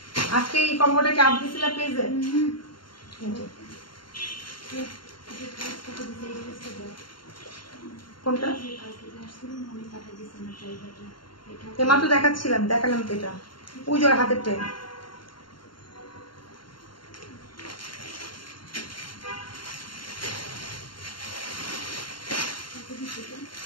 আজকে এই কম্বোটা কি আপনি দিছিলেন পেজে? কোনটা এমাত্র দেখাচ্ছিলাম, দেখালাম তো, এটা পুজোর হাতের টাইম।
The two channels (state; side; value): late; right; 0.72 ms